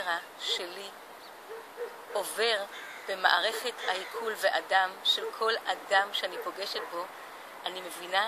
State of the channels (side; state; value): both; identical; correlation 1.00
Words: שלי עובר במערכת העיכול ואדם של כל אדם שאני פוגשת בו, אני